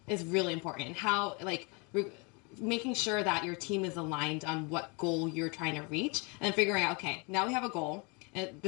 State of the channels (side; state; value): right; quieter; 31.1 dB